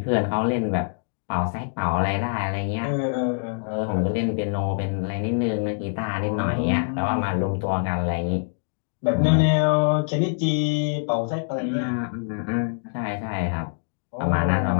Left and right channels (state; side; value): silent; right; digital silence